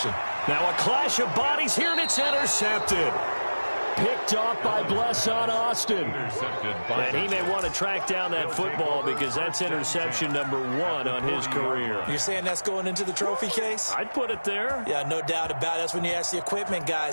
Now a clash of bodies here, and it's intercepted. Picked off by Blesson Austin. And he may want to track down that football because that's interception number 1 on his career. You're saying that's going into the trophy case? I'd put it there. Yeah, no doubt about it. That's when you ask the equipment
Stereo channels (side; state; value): both; inverted; correlation -1.00